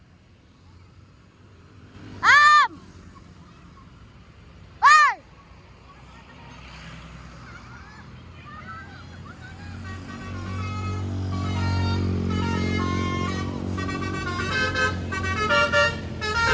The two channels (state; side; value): identical; both; correlation 1.00